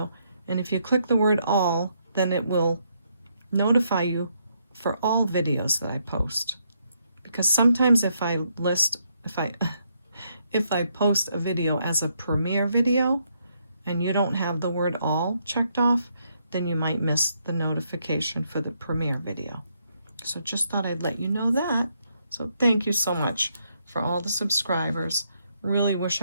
and if you click the word all, then it will notify you for all videos that I post. Because sometimes if I post a video as a premiere video and you don't have the word all checked off, then you might miss the notification for the premiere video. So just thought I'd let you know that. So thank you so much for all the subscribers. Really wish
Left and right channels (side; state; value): both; inverted; correlation -0.76